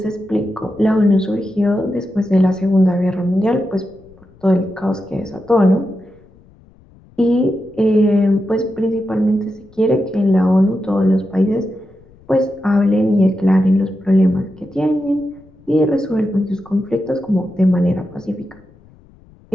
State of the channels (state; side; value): noise; left; rumble, 27 dB below the sound